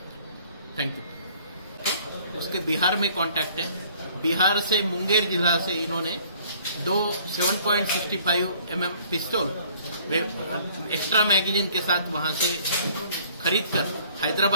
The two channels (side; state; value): both; inverted; correlation -0.56